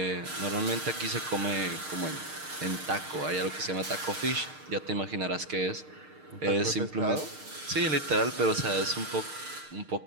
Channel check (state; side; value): late; left; 6.5 ms